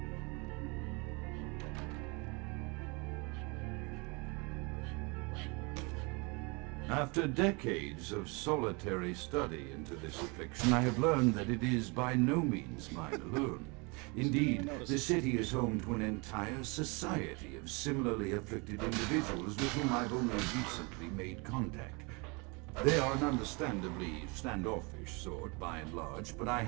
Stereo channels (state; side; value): quieter; left; 29.6 dB